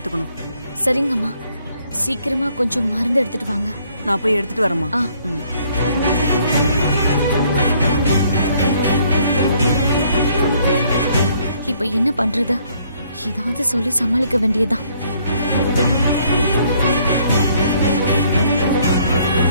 சரிங்கம்மா, சீக்கிரமா கொஞ்சம் மருந்து எடுத்துட்டு வாங்க. நான் போய் எடுத்துட்டு வரேம்மா. இப்ப என்ன பண்றது? ஏதாவது சொல்லி சமாளிக்க வேண்டியதுதான்.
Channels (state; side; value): inverted; both; correlation -0.64